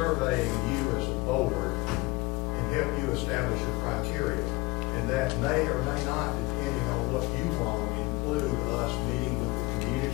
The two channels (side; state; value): right; quieter; 22.5 dB